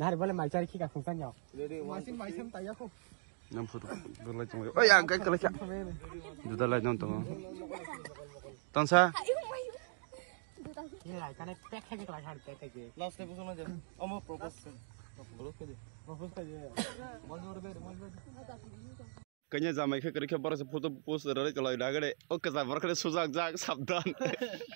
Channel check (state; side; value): silent; left; digital silence